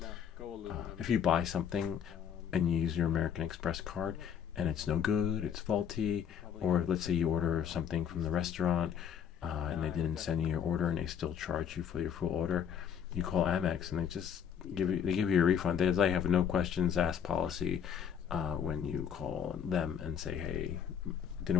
if you buy something and you use your American Express card and it's no good, it's faulty, or let's say you order something from the restaurant and they didn't send you your order and they still charge you for your full order, you call Amex and they just give you a refund. They have no questions asked policy when you call them and say, hey, it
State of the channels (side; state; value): right; quieter; 8.2 dB